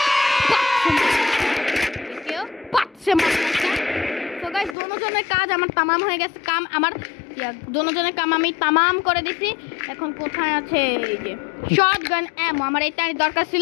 কেউ পাট সে মার। তো গাইস দুজনের কাজ আমার tamam হয়ে গেছে, কাম আমার দুজনের কাম আমি tamam করে দিছি। এখন কোথায় আছে এই যে শটগান এমো, আমার এইটারই দরকার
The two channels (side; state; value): right; drops out; at 4.8 s